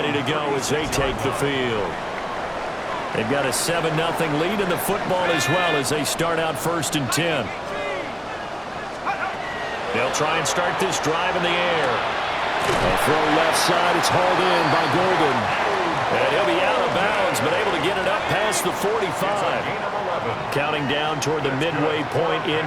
to go as they take the field. They've got a 7-0 lead in the football as well as they start out 1st and 10. They'll try and start this drive in the air. A throw left side. It's hauled in by Golden. And he'll be out of bounds, but able to get it up past the 45. Counting down toward the midway point in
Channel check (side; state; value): both; identical; correlation 1.00